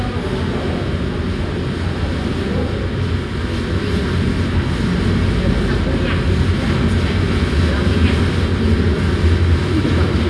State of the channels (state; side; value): identical; both; correlation 1.00